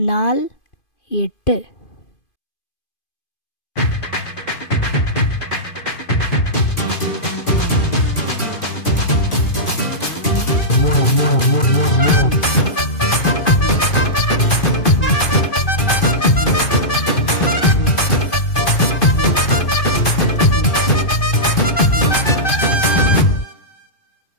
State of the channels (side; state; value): right; late; 2.5 ms